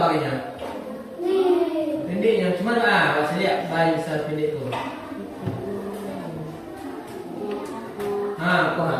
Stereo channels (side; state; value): both; identical; correlation 1.00